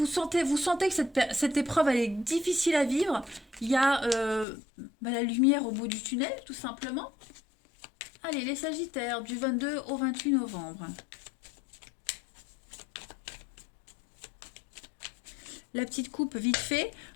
sentez que cette épreuve elle est difficile à vivre, il y a la lumière au bout du tunnel, tout simplement. Allez, les Sagittaires, du 22 au 28 novembre. La petite coupe vite fait.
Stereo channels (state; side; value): drops out; right; at 4.5 s